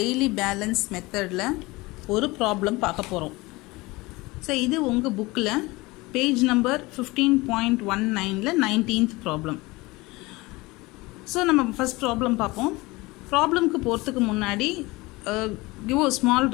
balance methodல ஒரு problem பார்க்க போறோம். So இது உங்க bookல page number 15.19ல 19th problem. So நம்ம first problem பார்ப்போம். Problemக்கு போறதுக்கு முன்னாடி give a small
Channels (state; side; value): quieter; right; 22.2 dB